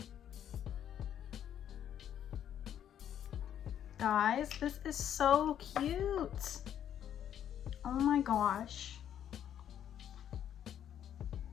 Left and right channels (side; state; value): right; quieter; 9.9 dB